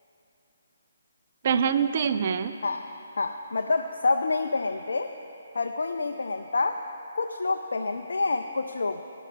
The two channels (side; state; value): both; inverted; correlation -0.81